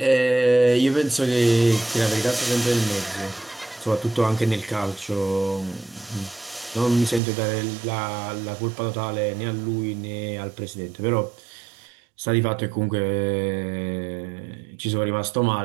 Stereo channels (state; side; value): drops out; left; at 7.2 s